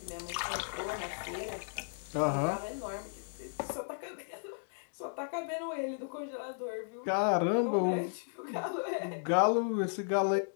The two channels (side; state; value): right; silent; digital silence